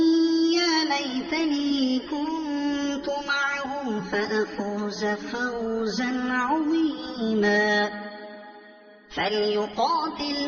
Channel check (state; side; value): identical; both; correlation 1.00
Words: يا ليتني كنت معهم فأفوز فوزا عظيما